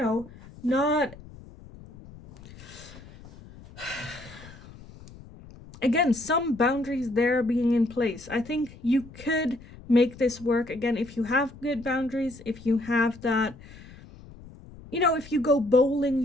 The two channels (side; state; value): left; noise; rumble, 19 dB below the sound